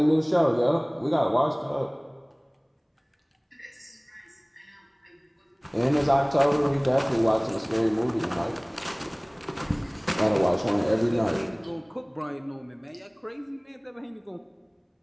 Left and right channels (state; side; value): identical; both; correlation 1.00